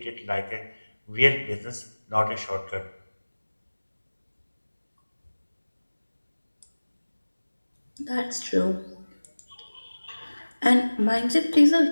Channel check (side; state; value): both; inverted; correlation -1.00